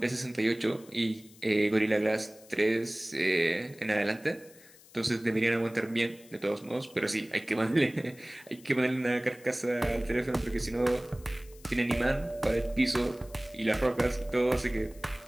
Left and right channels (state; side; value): noise; left; hiss, 24 dB below the sound